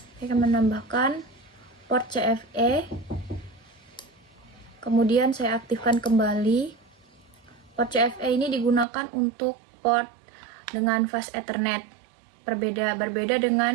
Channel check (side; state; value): left; drops out; at 8.8 s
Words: Saya akan menambahkan port CFE, kemudian saya aktifkan kembali. Port CFE ini digunakan untuk port dengan fast Ethernet, berbeda